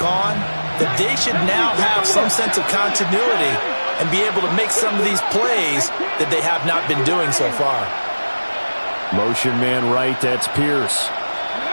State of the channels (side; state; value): both; inverted; correlation -1.00